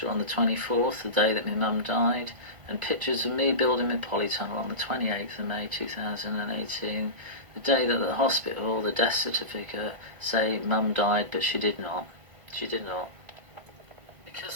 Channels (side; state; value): left; late; 1.7 ms